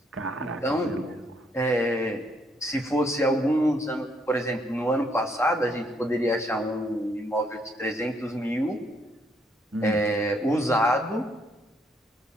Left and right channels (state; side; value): normal; both; correlation 0.71